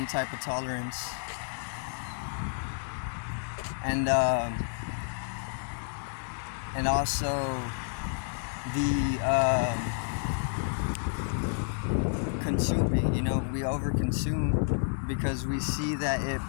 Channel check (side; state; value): right; silent; digital silence